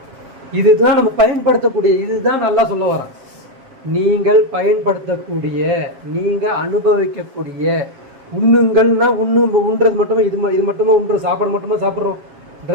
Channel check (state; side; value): late; left; 7.5 ms